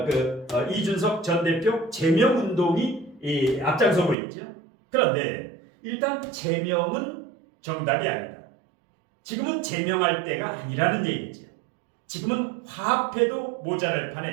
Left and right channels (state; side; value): drops out; left; at 4.2 s